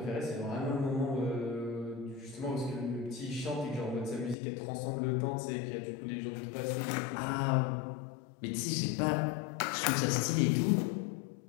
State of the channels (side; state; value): right; drops out; at 4.4 s